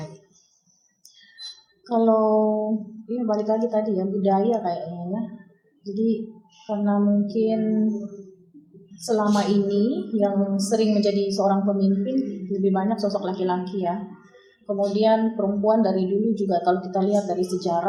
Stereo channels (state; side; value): identical; both; correlation 1.00